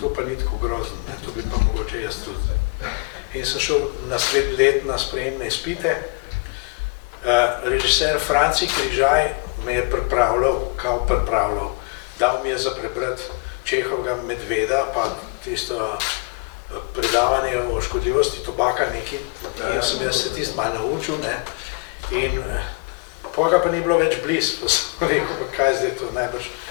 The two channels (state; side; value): quieter; right; 34.4 dB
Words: pa ni tako grozno, to bi pa mogoče jaz tudi. In sem šel naslednji let na sprejemne izpite. Režiser Franci Križaj me je pripravljal, dal mi je za prebrati Čehovega Medveda, pa tisto predavanje o škodljivosti tobaka nekaj in sem jaz se tisto malo naučil, ne, in potem pa ni bilo več blizu, pa sem rekel, pa kaj zdaj to najbrž.